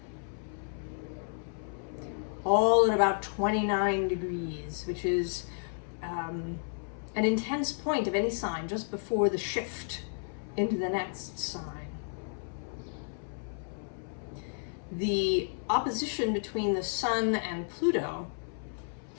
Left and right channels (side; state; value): right; silent; 56 dB below the other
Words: All at about 29 degrees, which is an intense point of any sign just before the shift into the next sign. The opposition between the sun and Pluto